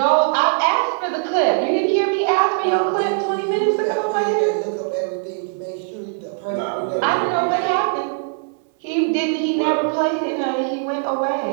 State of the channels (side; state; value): left; silent; 65 dB below the other